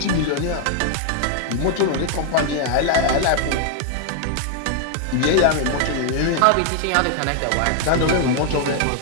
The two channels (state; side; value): different; both; correlation 0.00